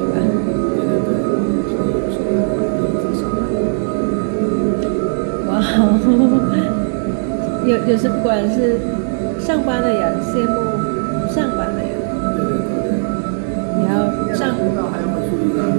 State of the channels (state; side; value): silent; left; digital silence